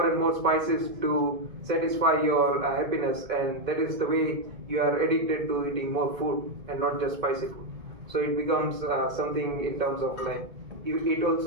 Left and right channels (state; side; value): late; left; 2.5 ms